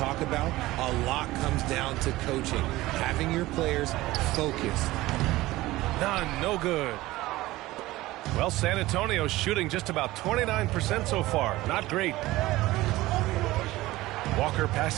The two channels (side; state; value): left; quieter; 18.0 dB